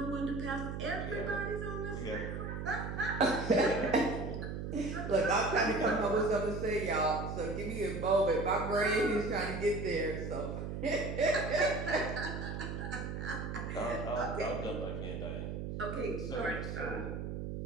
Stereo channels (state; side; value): noise; right; hum, 5 dB below the sound